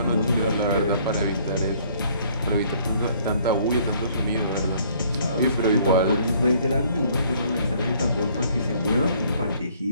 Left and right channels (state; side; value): inverted; both; correlation -0.60